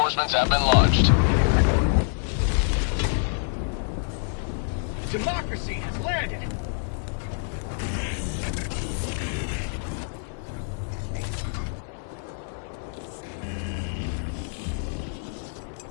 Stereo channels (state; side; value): silent; right; 61 dB below the other